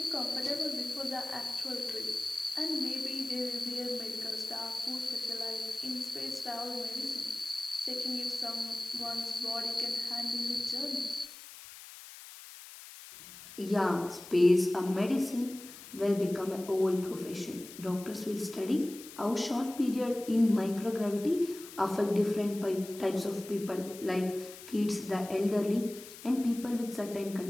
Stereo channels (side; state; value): left; noise; hiss, 15 dB below the sound